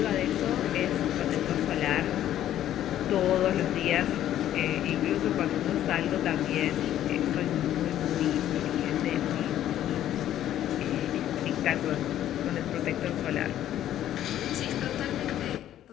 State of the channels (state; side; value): quieter; right; 11.9 dB